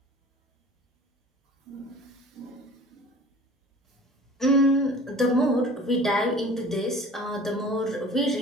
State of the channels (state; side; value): normal; both; correlation 0.44